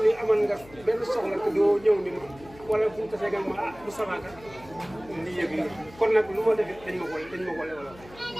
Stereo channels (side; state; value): left; noise; hum, 21 dB below the sound